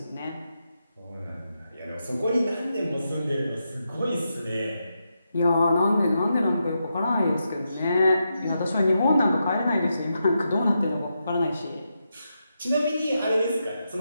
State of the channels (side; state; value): both; inverted; correlation -0.85